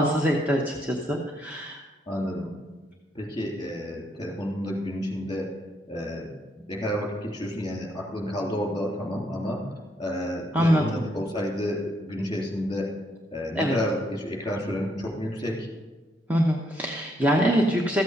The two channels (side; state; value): both; normal; correlation 0.74